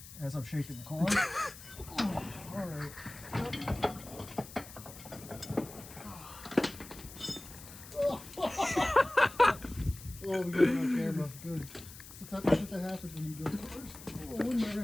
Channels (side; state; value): left; noise; hiss, 16 dB below the sound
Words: as I'm shaking the car. All right. Oh, we got it on camera. Good. It's the type of shit that happens when you build cars. Oh, where'd my